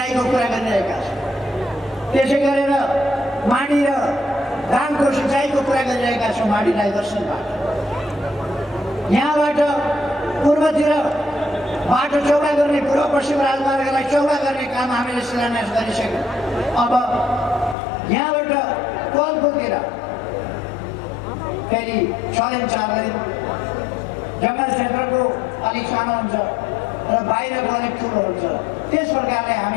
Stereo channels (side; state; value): right; drops out; at 17.8 s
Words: कुरा गरिरहेका छौँ। त्यसै गरेर माडी र धानको सिँचाइको कुरा गरिरहेका छौँ माडी डाइभर्सनबाट। यहाँबाट पूर्वतिर बाटो चौडा गर्ने, पूर्व पश्चिम राजमार्गलाई चौडा गर्ने काम हामीले शिलान्यास गरिसक्यौँ। अब यहाँबाट कोलपुरतिर फेरि 6 लेन 4 लेन जङ्गल क्षेत्रको अलिक सानो हुन्छ र बाहिरको अलिक ठुलो हुन्छ। त्यस प्रकारले